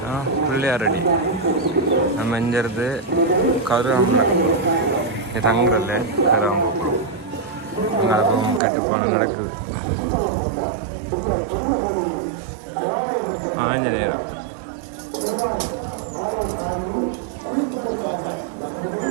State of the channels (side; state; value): left; drops out; at 8.6 s